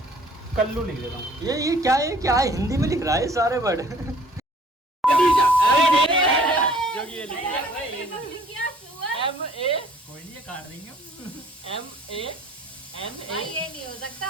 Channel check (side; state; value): both; normal; correlation 0.55